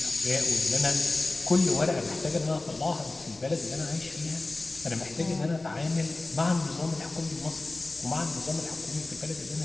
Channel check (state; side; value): quieter; right; 3.0 dB